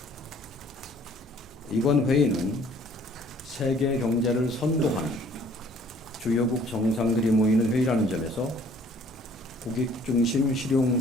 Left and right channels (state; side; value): normal; both; correlation 0.57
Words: 이번 회의는 세계 경제를 선도하는 주요국 정상들이 모이는 회의라는 점에서 국익 중심 실용